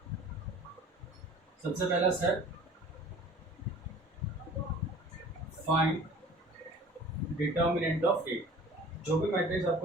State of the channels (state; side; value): normal; both; correlation 0.46